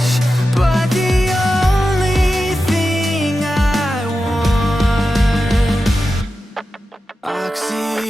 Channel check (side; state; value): both; normal; correlation 0.91